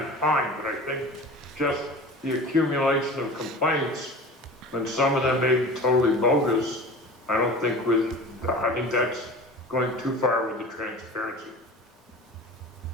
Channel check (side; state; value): both; normal; correlation 0.38